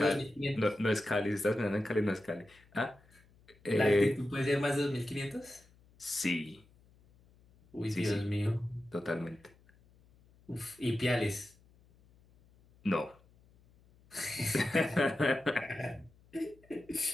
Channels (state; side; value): noise; left; hum, 29 dB below the sound